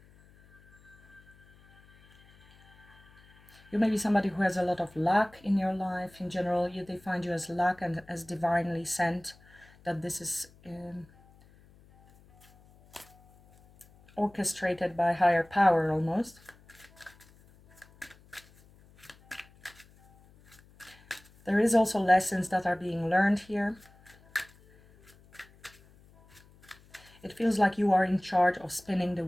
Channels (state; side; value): noise; left; hum, 27 dB below the sound